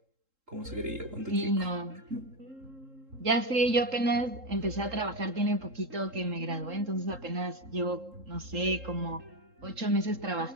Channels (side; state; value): left; late; 3.7 ms